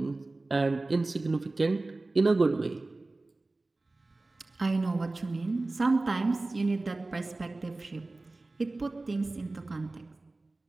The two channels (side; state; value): left; quieter; 3.1 dB